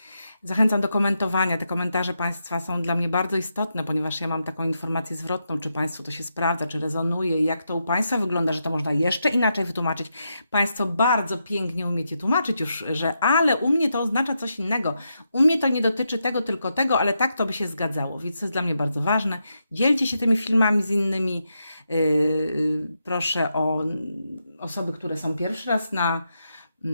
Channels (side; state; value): both; inverted; correlation -0.84